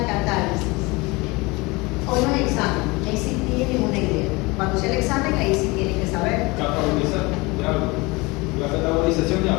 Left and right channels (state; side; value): quieter; right; 24.5 dB